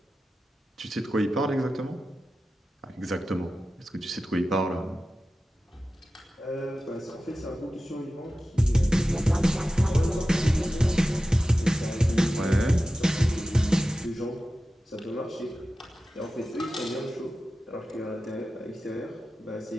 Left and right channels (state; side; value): normal; both; correlation 0.94